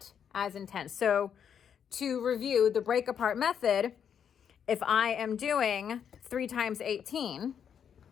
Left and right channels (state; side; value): quieter; right; 8.1 dB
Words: as intense. So to review the break apart method, if I am doing 3 times 18,